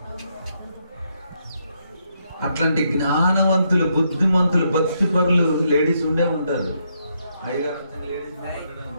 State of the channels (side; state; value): both; inverted; correlation -0.77